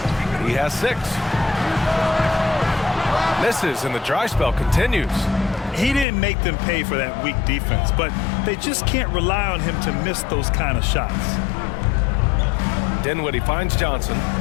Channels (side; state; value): right; drops out; at 6.1 s